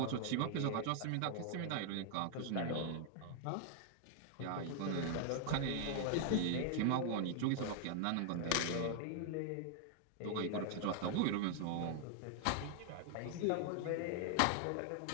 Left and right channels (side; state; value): both; different; correlation 0.00